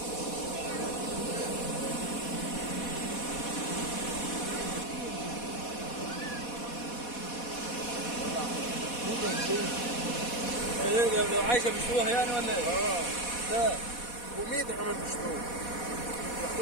لو عايشه بيشوها يعني ولا ايه؟ لا وميدة كمان بيشتروها،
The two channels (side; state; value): right; late; 4.1 ms